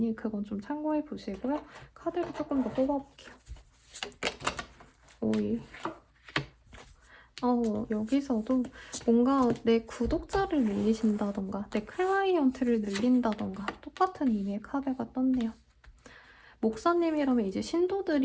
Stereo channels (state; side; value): identical; both; correlation 1.00